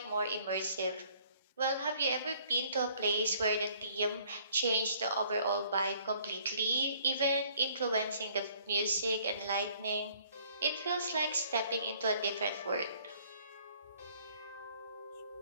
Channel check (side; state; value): both; inverted; correlation -0.59